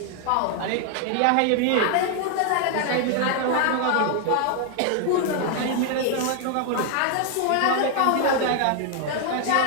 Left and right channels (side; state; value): both; different; correlation 0.00